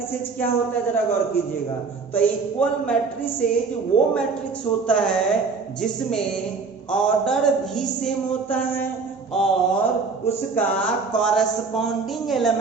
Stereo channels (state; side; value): quieter; left; 4.7 dB